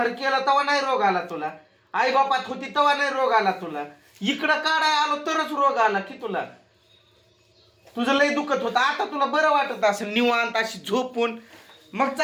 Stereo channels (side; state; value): both; identical; correlation 1.00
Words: केला तेव्हा नाही रोग आला तुला. आई बापात होती तेव्हा नाही रोग आला तुला. इकडं काढाय आलो तरच रोग आला की तुला. तुझं लय दुखत होतं, आता तुला बरं वाटत असेल निवांत अशी झोपून, मग